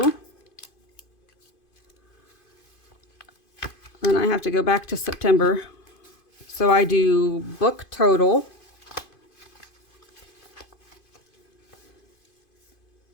Then I have to go back to September. So I do book total.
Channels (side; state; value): right; late; 2.5 ms